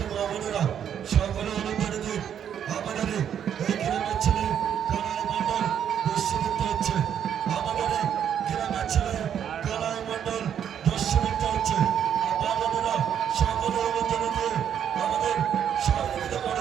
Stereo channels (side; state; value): left; quieter; 9.0 dB